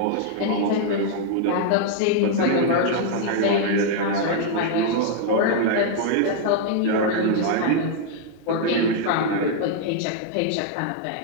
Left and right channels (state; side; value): different; both; correlation 0.00